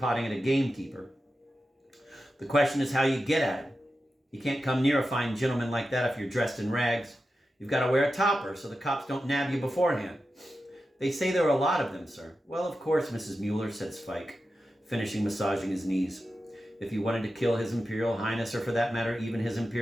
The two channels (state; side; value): normal; both; correlation 0.91